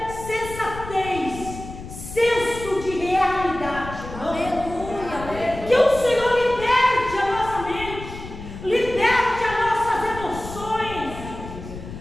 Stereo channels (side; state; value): left; noise; rumble, 12 dB below the sound